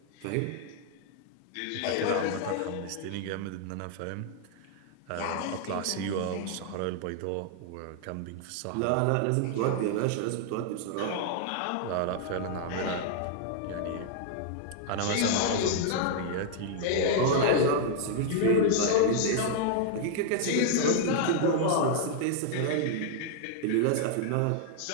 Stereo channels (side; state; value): both; different; correlation 0.00